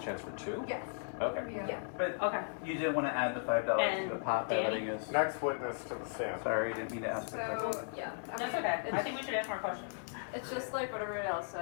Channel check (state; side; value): silent; right; digital silence